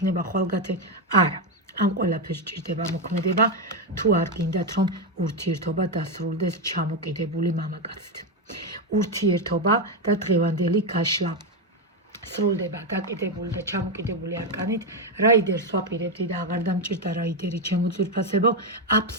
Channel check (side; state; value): both; normal; correlation 0.07